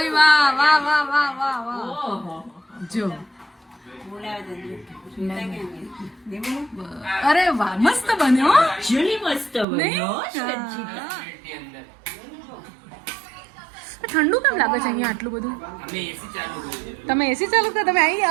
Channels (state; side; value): drops out; left; at 9.7 s